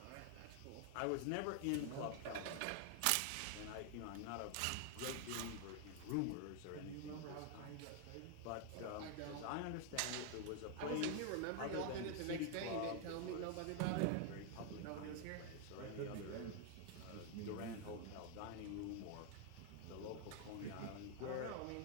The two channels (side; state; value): both; different; correlation 0.00